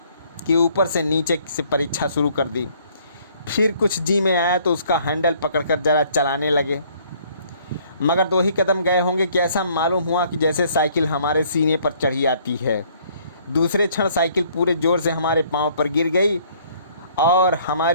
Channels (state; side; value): inverted; both; correlation -0.61